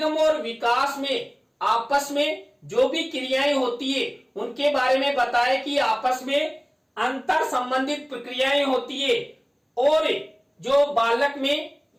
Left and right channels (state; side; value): identical; both; correlation 1.00